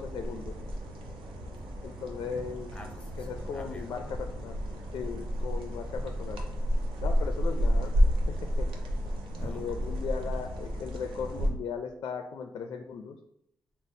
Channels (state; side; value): normal; both; correlation 0.88